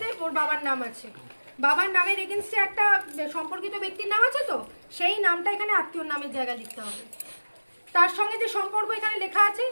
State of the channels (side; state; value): both; inverted; correlation -1.00